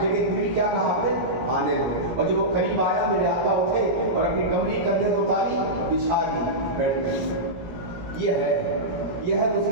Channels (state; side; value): late; left; 17 ms